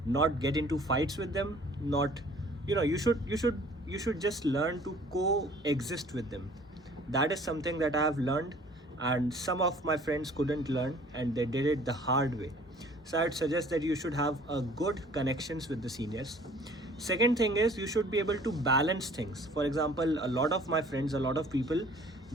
not get into fights with them. Not, you should just learn to coexist with them. That is something that I have learned, and some of my friends couldn't learn and they did it the hard way. So I'd suggest that you should have a good connections with the seniors. Second thing is, you should be able to balance things. For example, a lot of my friends, a lot of people,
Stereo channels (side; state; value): both; normal; correlation 0.53